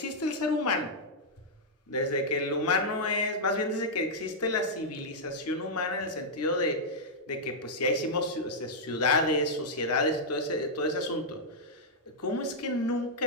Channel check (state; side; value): normal; both; correlation -0.07